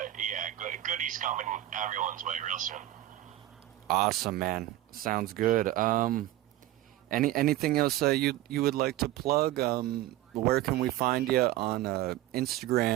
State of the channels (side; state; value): left; quieter; 14.8 dB